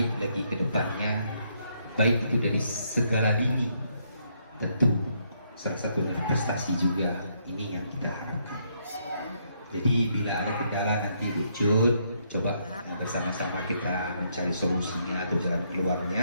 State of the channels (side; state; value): both; inverted; correlation -0.74